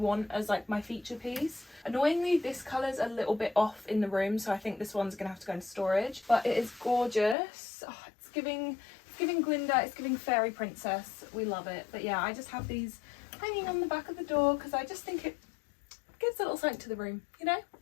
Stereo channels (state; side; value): drops out; right; at 7.4 s